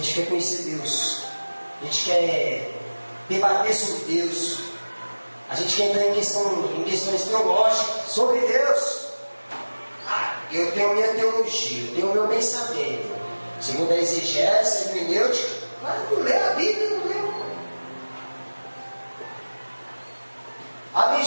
quer conhecer Deus, a gente quer debater sobre Deus, a gente quer entrar em questões teológicas sobre Deus. Eu tenho minha teologia, eu tenho meu pensamento, segundo a exegese, a hermenêutica. Mas não lê a Bíblia, não lê. Abre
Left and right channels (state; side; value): inverted; both; correlation -1.00